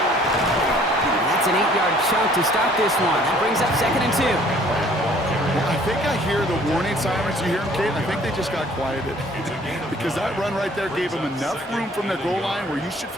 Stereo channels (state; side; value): normal; both; correlation 0.56